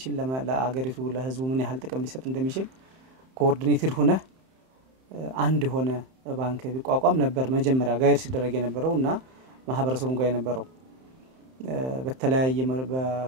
ለአገሪቱ ለህዝቡ ምን ያህል ጥቅም ሊሰጥ እንደሚችል ኮኦርዲኔትድ ሆነ አንድ ሆነ ባንክ ቢቋቋም ነበር መጀመሪያ ጋይድ ሲደረግ የነበረውና ማህበረሰቡን ጋር የነበረው በተለያየ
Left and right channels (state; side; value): late; left; 31 ms